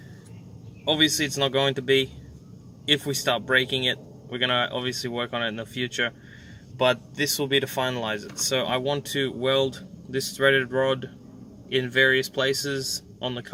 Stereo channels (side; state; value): both; identical; correlation 1.00